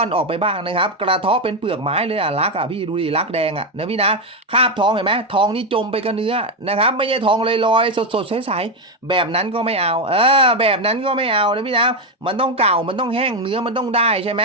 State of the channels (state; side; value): normal; both; correlation 0.07